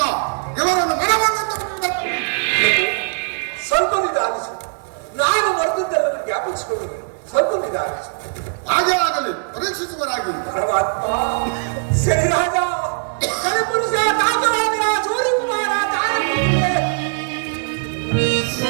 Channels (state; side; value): silent; left; 66 dB below the other